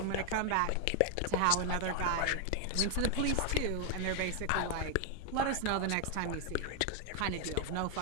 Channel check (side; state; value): both; different; correlation 0.00